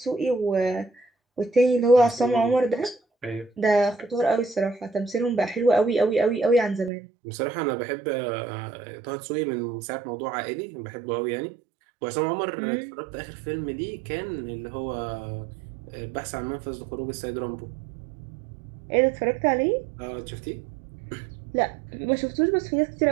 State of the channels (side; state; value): left; drops out; at 6.9 s